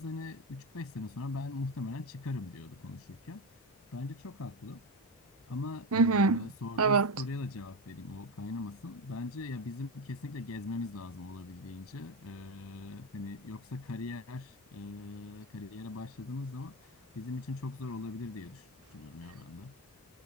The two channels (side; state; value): both; normal; correlation 0.15